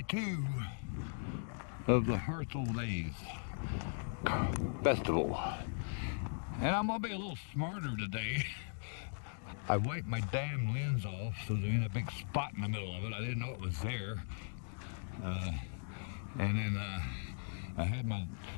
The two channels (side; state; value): right; silent; digital silence